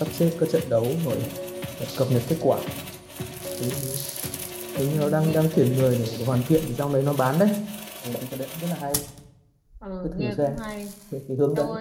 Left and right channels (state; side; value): identical; both; correlation 1.00